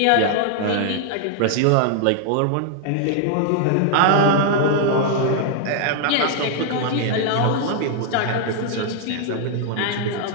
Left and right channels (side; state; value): both; different; correlation 0.00